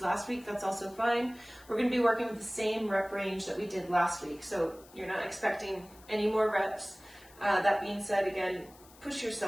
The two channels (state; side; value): noise; left; hiss, 24 dB below the sound